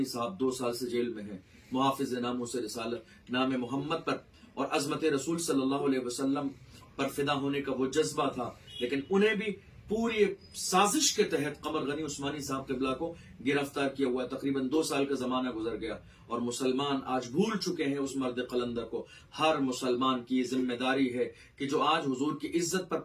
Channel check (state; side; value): identical; both; correlation 1.00